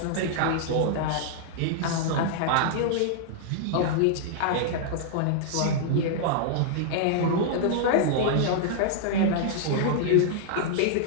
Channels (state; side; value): different; both; correlation -0.01